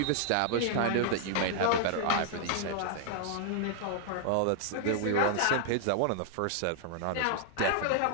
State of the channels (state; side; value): different; both; correlation 0.00